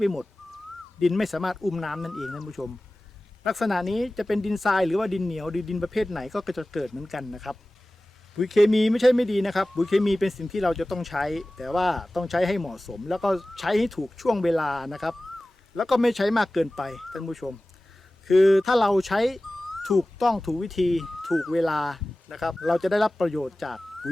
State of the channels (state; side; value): normal; both; correlation 0.97